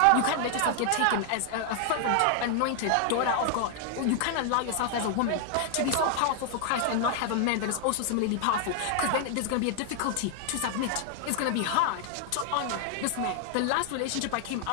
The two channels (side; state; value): both; different; correlation 0.00